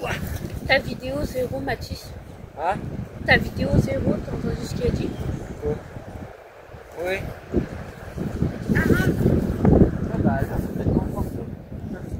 Ta vidéo 0, Mathis. Ah? Ta vidéo 0, t'as entendu ce qu'il a dit? Oui.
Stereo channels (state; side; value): identical; both; correlation 1.00